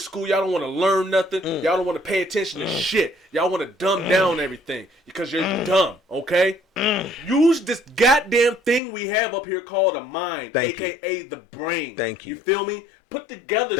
Y'all don't want to learn nothing. Y'all don't want to pay attention to shit. Y'all want to dumb down everything because you're dumb, okay? Use this goddamn thing we have up here called a mind, Thank you. a.k.a. the brain. Thank you. You feel me? Put together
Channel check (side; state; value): right; drops out; at 8.8 s